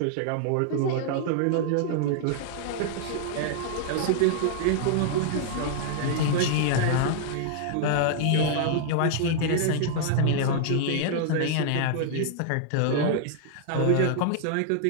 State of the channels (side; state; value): both; different; correlation -0.01